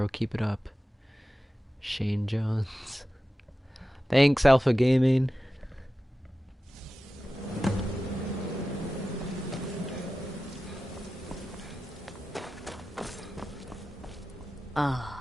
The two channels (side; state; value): both; normal; correlation 0.94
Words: Keep it up. Shane Jones. Thanks, Alpha Gaming.